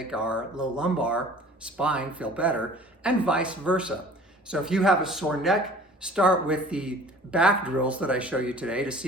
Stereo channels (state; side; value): normal; both; correlation 0.47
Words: our low lumbar spine feel better, and vice versa. So if you have a sore neck, start with the back drills that I show you today to see